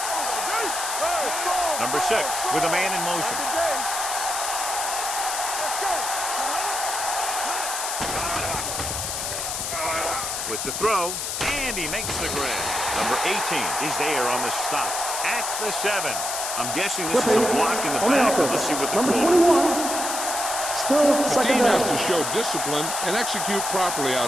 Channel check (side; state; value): left; noise; hiss, 3 dB below the sound